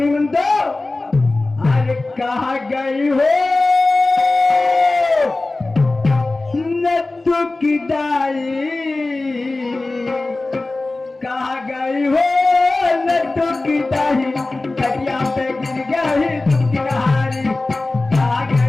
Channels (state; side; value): quieter; right; 3.1 dB